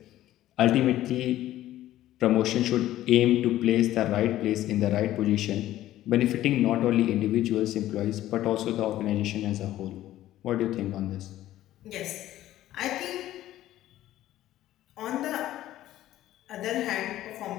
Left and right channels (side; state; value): right; quieter; 14.0 dB